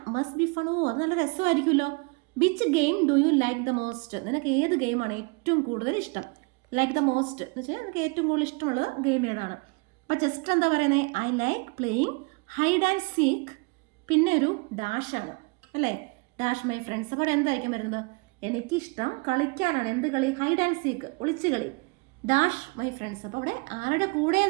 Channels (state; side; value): quieter; left; 30.3 dB